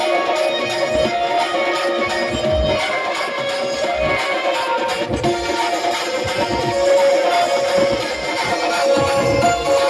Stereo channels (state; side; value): identical; both; correlation 1.00